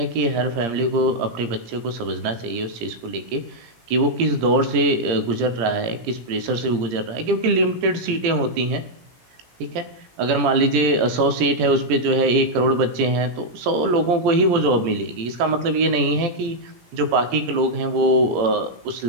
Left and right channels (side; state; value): left; late; 17 ms